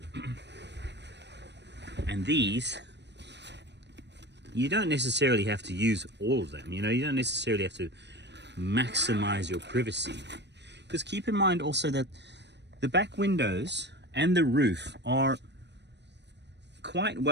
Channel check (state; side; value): late; left; 0.50 ms